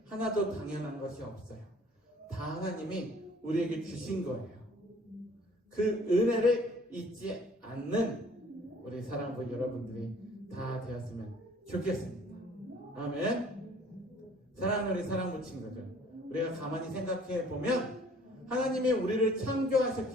하나도 당연한 것이 없어요. 다 하나님이 우리에게 주신 거예요. 그 은혜를 잊지 않는 우리 사랑부 여러분들이 다 되었으면 좋겠습니다. 아멘. 사랑하는 우리 사랑부 친구들, 우리가 가만히 생각해 보면 하나님이 우리를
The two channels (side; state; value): both; normal; correlation 0.55